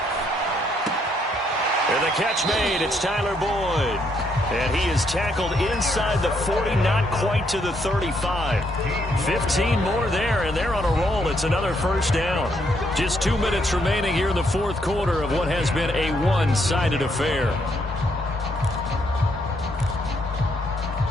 And the catch made. It's Tyler Boyd. And he is tackled inside the 40, not quite to the 35. 15 more there, and they're on a roll. It's another first down. Just 2 minutes remaining here in the fourth quarter of what has been a one-sided affair.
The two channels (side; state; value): both; normal; correlation 0.73